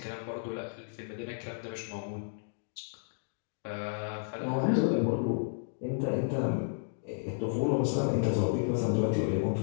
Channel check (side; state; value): right; silent; digital silence